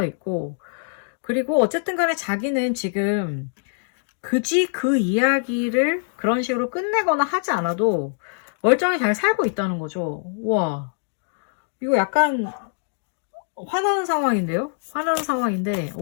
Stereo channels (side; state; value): right; silent; digital silence